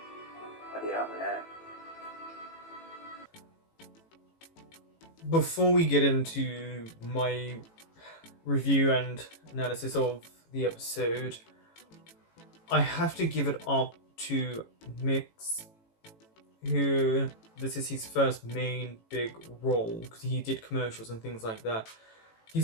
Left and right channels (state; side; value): late; right; 18 ms